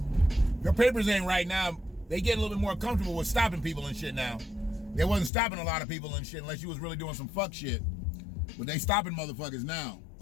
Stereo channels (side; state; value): right; drops out; at 5.3 s